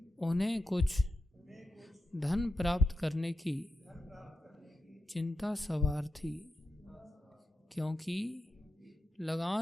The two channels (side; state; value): both; normal; correlation 0.89